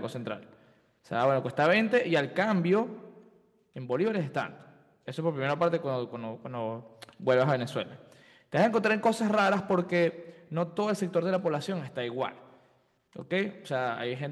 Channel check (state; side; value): identical; both; correlation 1.00